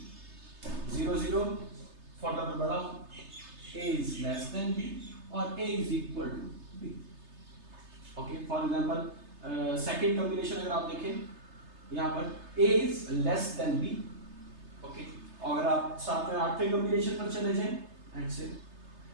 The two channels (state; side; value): late; left; 3.3 ms